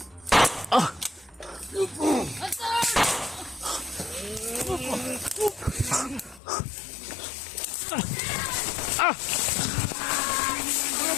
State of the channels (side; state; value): right; drops out; at 6.4 s